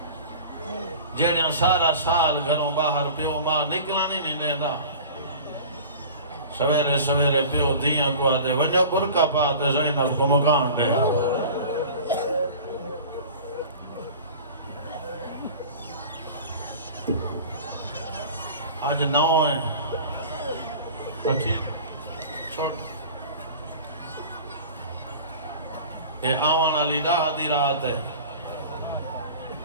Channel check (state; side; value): inverted; both; correlation -0.39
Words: جیڑیاں سارا سال گھروں باہر پیو ماں نکلانی نہیں دینا سویرے سویرے پیو دیاں کو آدھے ونجا برکا پاتے زینب کو مکان دے آج 9 ہیں پکی چھوڑ اے آوان علی دا آدھی رات ہے